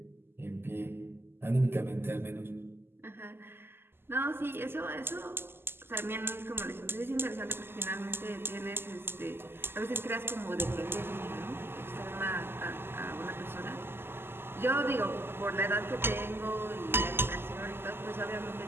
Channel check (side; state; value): left; late; 0.11 ms